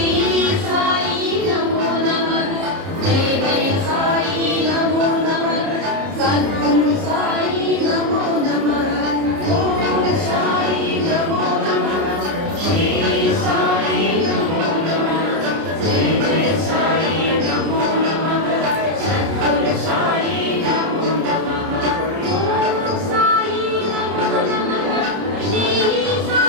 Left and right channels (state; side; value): late; left; 30 ms